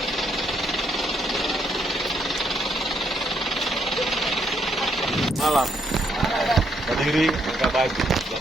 Malam. Berdiri, buka baju.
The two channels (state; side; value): normal; both; correlation 0.74